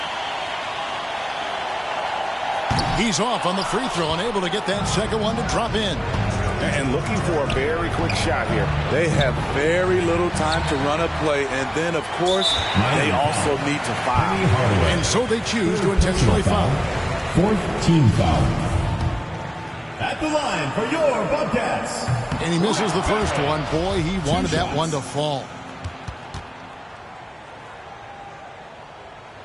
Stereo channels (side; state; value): both; identical; correlation 1.00